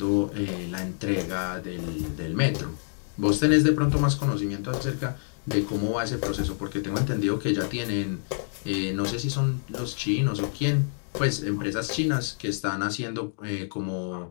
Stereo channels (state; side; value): silent; right; digital silence